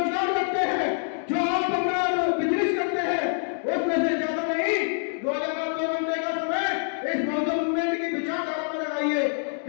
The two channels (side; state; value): right; silent; 61 dB below the other